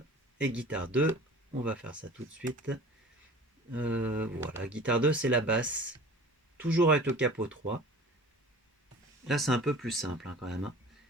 et guitare 2. On va faire ça tout de suite. Voilà, guitare 2 c'est la basse, toujours avec le capot 3. Là c'est un peu plus simple quand même.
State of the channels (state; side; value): normal; both; correlation 0.42